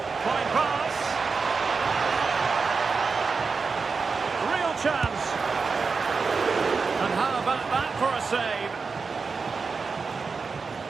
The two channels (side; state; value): left; quieter; 4.8 dB